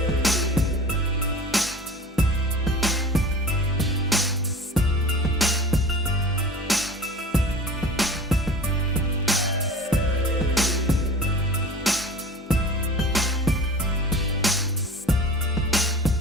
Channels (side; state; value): both; normal; correlation 0.39